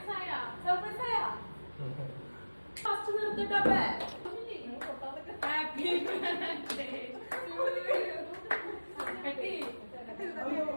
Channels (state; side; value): inverted; both; correlation -1.00